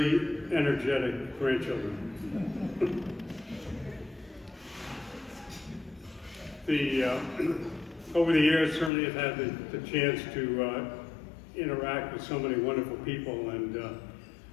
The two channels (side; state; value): right; drops out; at 8.9 s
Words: energetic grandchildren. Over the years, certainly I've had the chance to interact with so many wonderful people, and